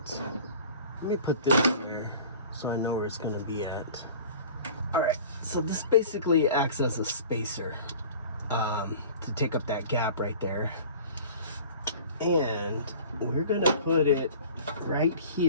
Let me put this here so I know where it's going to be at. Alright, so this basically acts as a spacer to take up that gap right there. And we're going to put it right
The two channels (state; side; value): inverted; both; correlation -0.43